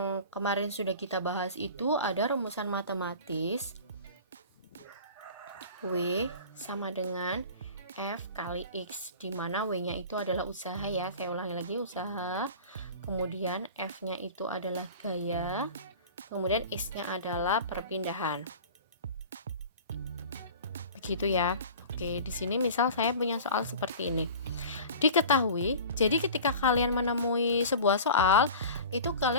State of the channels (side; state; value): both; inverted; correlation -0.38